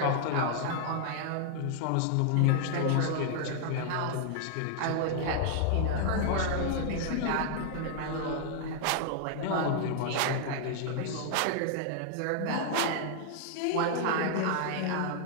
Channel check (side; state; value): both; different; correlation -0.01